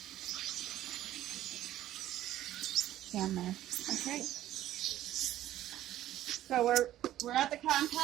Down there. Okay. So we're at the cotton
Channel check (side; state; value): left; quieter; 13.4 dB